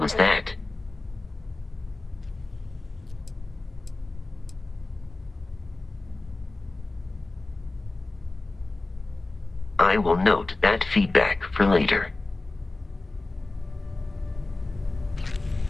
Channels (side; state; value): right; quieter; 3.1 dB